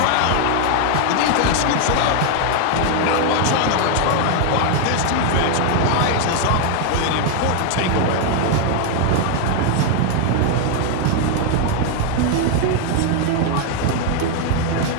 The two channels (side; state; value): both; different; correlation 0.00